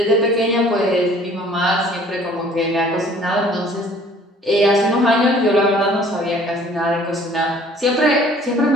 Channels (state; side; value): normal; both; correlation 0.54